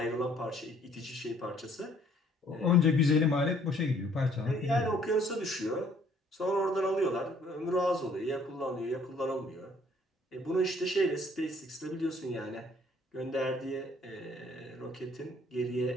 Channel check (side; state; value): both; normal; correlation 0.61